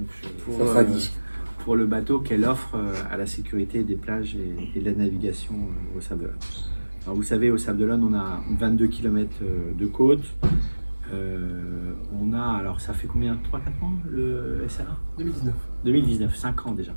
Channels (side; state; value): both; inverted; correlation -1.00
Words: Ça sera dit. pour le bateau qu'elle offre à la sécurité des plages et de la navigation au Sables-d'Olonne. Alors vous savez, au Sables-d'Olonne, on a 22 km de côte. On a, alors ça fait combien, 3-4 ans le SRA 2019, 5 ans déjà.